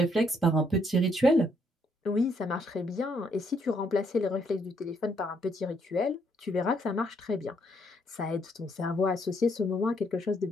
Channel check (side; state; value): both; normal; correlation 0.72